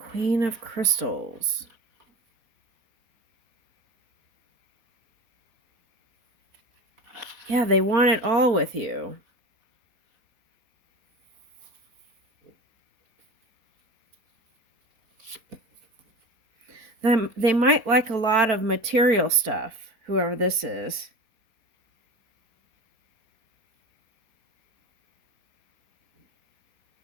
of Crystals. Yeah, they want it all with you. They might like a lot of material stuff, whoever this is.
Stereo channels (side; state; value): left; late; 4.1 ms